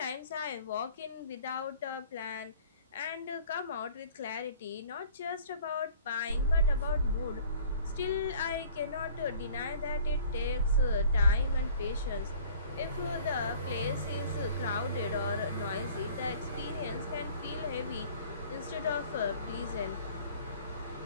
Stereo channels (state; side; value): inverted; both; correlation -0.51